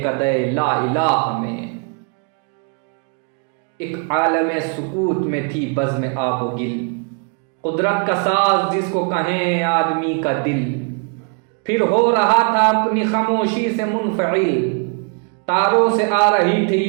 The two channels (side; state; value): left; quieter; 37.7 dB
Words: لا الہ میں، ایک عالم سکوت میں تھی بزم آب و گل، قدرت کا ساز جس کو کہیں آدمی کا دل، پھر ہو رہا تھا اپنی خاموشی سے منفعل، تاروں سے آ رہی تھی